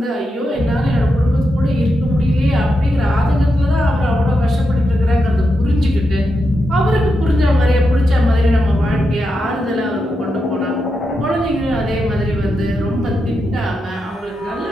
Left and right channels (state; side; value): normal; both; correlation 0.86